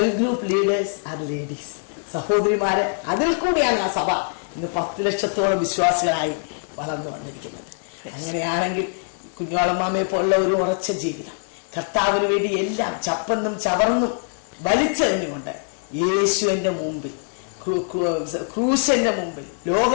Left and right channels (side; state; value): right; silent; 63 dB below the other